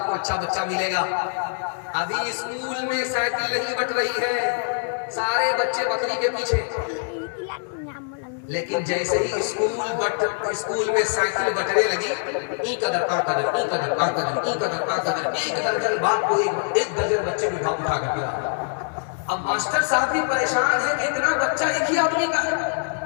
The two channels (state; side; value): silent; right; 63 dB below the other